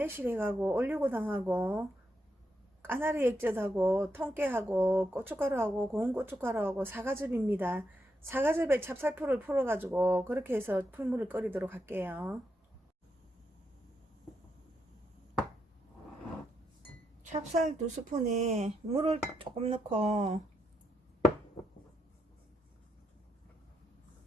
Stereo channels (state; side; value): normal; both; correlation 0.81